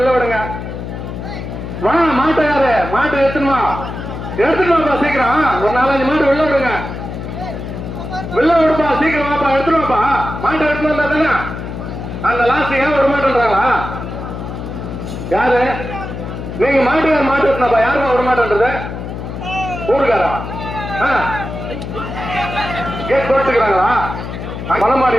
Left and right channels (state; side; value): noise; left; hum, 7 dB below the sound